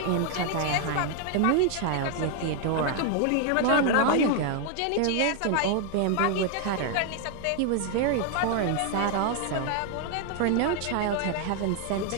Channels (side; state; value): both; different; correlation 0.00